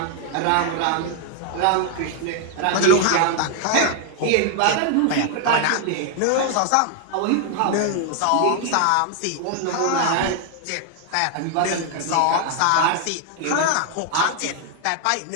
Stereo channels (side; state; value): both; different; correlation 0.00